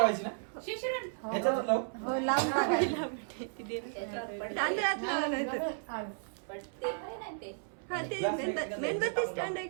ना ह्याच्यातच लावू तांदळात लावायचं हा ते मेणबत्ती स्टँड आहे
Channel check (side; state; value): left; silent; 55 dB below the other